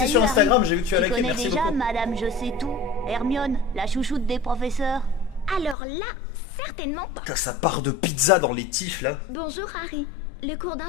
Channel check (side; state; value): right; drops out; at 5.8 s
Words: Salut, sur Instagram, Harry. j'ai vu que tu as liké, connais merci déjà beaucoup. Madame Je sais tout, Hermione, la chouchoute des professeurs. Alors là, certainement pas. Putain, ça part de pizza dans les tifs là. Bonjour Harry. Le cours